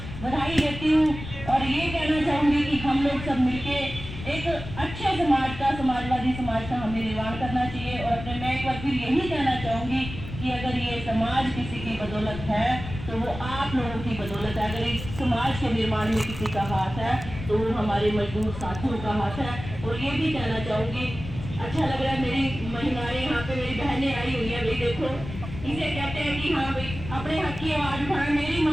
बधाई देती हूँ और ये कहना चाहूंगी कि हम लोग सब मिलके एक अच्छे समाज का, समाजवादी समाज का हमें निर्माण करना चाहिए। और अपने मैं एक बार फिर यही कहना चाहूंगी कि अगर ये समाज किसी की बदौलत है तो वो आप लोगों की बदौलत है। अगर इस समाज के निर्माण में किसी का हाथ है तो वो हमारे मजदूर साथियों का हाथ है। और ये भी कहना चाहूंगी, अच्छा लग रहा है मेरी महिलाएं यहाँ पे, मेरी बहनें आई हुई है। भाई देखो, इसे कहते हैं कि हाँ भाई अपने हक की आवाज उठाए। मेरी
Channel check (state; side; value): noise; left; rumble, 10 dB below the sound